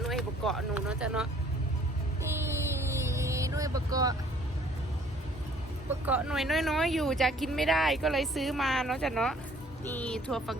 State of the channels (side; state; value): both; normal; correlation 0.57